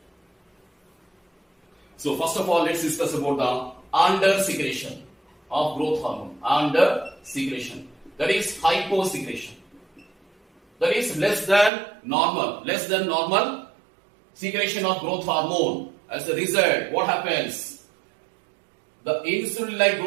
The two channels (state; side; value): drops out; left; at 11.7 s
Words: So first of all, let's discuss about the under secretion of growth hormone. Under secretion, that is hyposecretion. That is less than normal secretion of growth hormone. As a result, what happens? The insulin-like